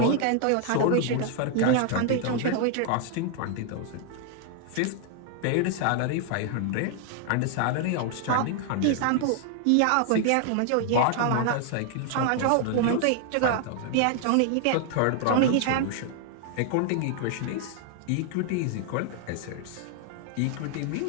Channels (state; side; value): different; both; correlation 0.00